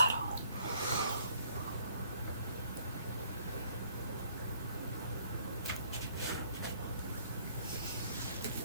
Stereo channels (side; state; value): both; inverted; correlation -0.63